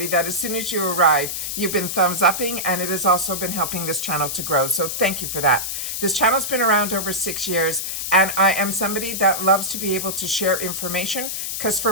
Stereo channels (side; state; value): left; noise; hiss, 4 dB below the sound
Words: that as soon as you arrive, you've been thumbs upping, and it has also been helping this channel to grow. So thank you for that. This channel's been around over 6 years, and I am somebody that loves to be able to share information, because for